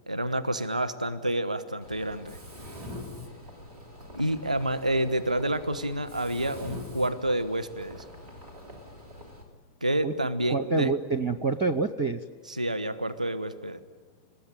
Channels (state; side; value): inverted; both; correlation -0.63